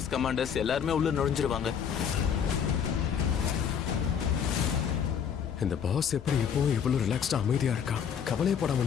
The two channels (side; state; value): right; quieter; 7.7 dB